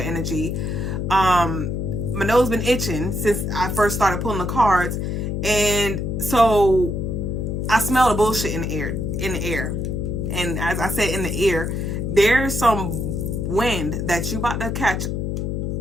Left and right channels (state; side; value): noise; left; hum, 2 dB below the sound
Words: energy, my nose been itching since I first started pulling the cards, and so I smell the bullshit in the air. And as I said, in the air, there's some wind that you about to catch